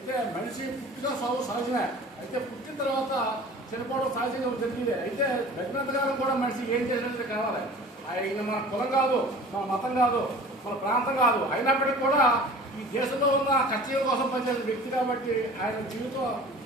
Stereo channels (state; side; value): normal; both; correlation 0.43